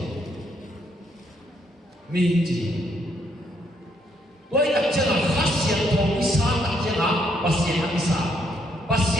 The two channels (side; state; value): both; normal; correlation 0.72